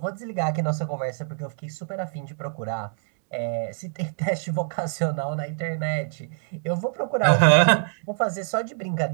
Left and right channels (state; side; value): silent; left; digital silence